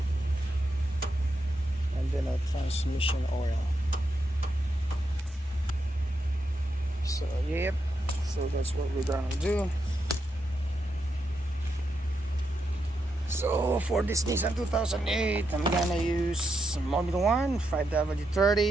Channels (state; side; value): normal; both; correlation 0.83